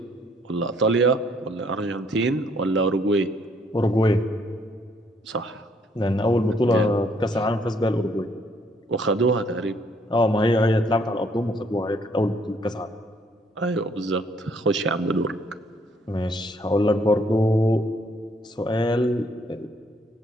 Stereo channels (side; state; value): both; normal; correlation 0.66